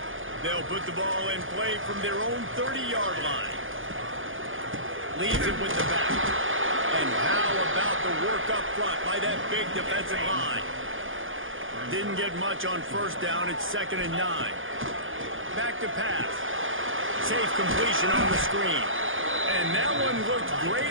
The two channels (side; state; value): left; late; 0.58 ms